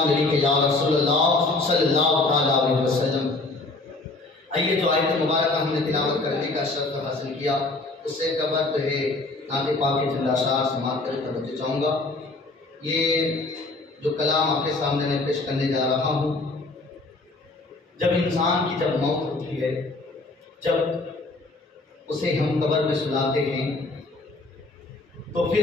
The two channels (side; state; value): right; quieter; 3.2 dB